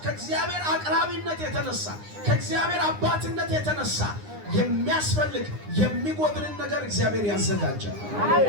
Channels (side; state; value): left; late; 9.8 ms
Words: ከእግዚአብሔር አቅራቢነት የተነሳ ከእግዚአብሔር አባትነት የተነሳ የሚያስፈልግ የሚጎድልን ነገር እግዚአብሔር ያዘጋጃል።